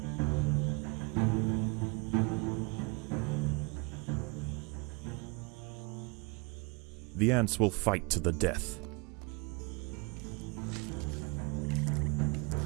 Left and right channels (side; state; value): left; quieter; 30.4 dB